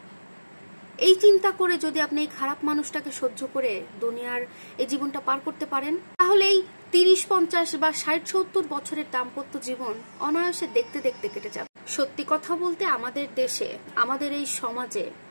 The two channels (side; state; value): both; inverted; correlation -1.00